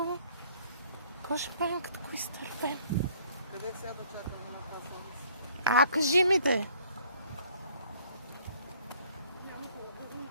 Какво ще правим, като го изтървем? Къде сега да чакаме на това? Кажи ми де.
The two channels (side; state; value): both; inverted; correlation -0.59